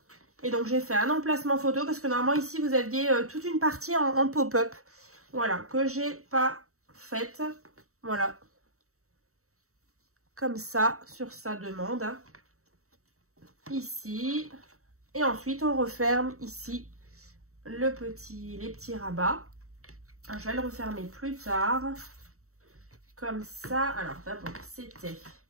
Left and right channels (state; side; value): late; left; 0.64 ms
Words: Et donc j'ai fait un emplacement photo parce que normalement ici vous aviez toute une partie en pop-up. Voilà, que j'ai pas faite. Voilà. Comme ça, sur sa demande. Hein. Ici. Et ensuite on referme ici les petits rabats. Alors, je vais le refermer plus tard. Comme ça. Alors d'abord c'était